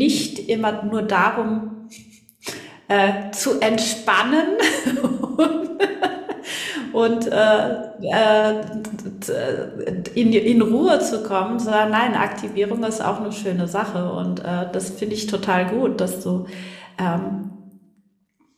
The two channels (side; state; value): both; identical; correlation 1.00